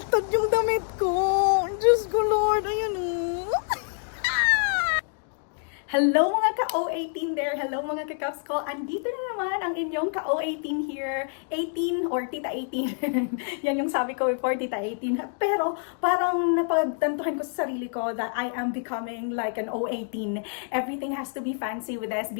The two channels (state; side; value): silent; right; 60 dB below the other